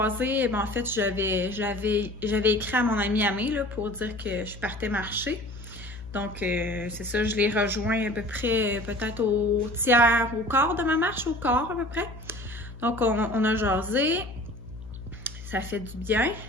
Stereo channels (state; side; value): noise; left; hum, 14 dB below the sound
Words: en fait, j'avais écrit à mon amie Amé, là, pour dire que je partais marcher. Donc, c'est ça, je l'ai rejoint à peu près, peut-être au tiers, au quart de ma marche, au quart à peu près. Donc, on a jasé. Ça fait du bien.